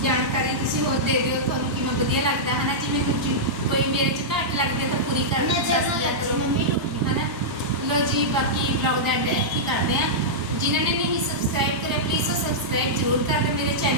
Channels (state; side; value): normal; both; correlation -0.11